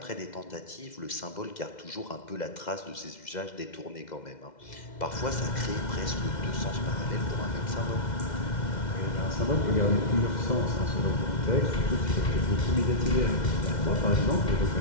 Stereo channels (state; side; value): late; right; 2.1 ms